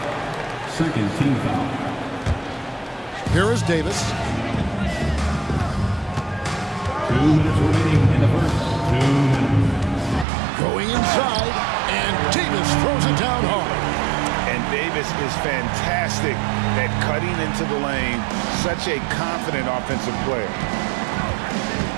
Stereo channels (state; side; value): drops out; left; at 10.2 s